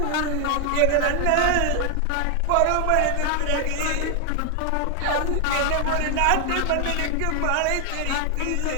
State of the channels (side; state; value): both; different; correlation 0.00